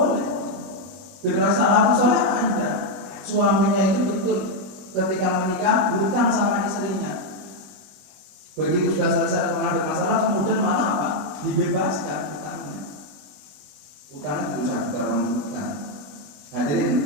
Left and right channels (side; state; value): left; late; 21 ms